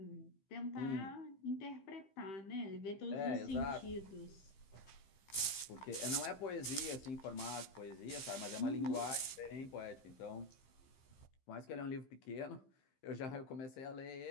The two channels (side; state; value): right; late; 15 ms